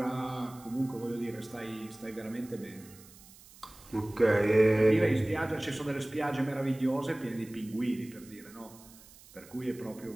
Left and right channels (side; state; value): right; noise; hiss, 22 dB below the sound